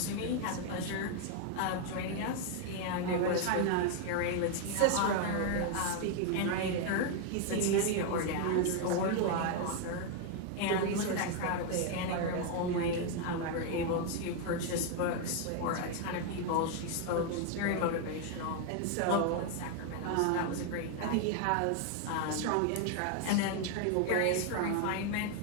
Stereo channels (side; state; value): both; different; correlation 0.01